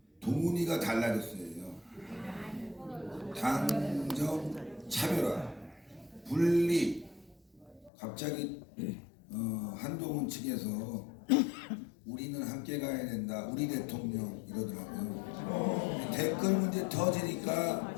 동훈이가 달라졌어요. 당정 차별화, 분리. 갑자기 한동훈 측에서 우리는 함께 가야 된다, 우리 대통령 이러더라고요. 댓글 문제 터지니까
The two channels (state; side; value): drops out; right; at 7.9 s